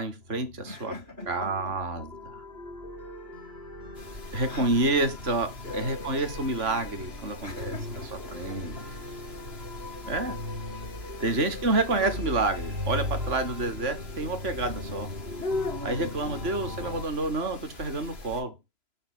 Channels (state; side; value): late; left; 3.0 ms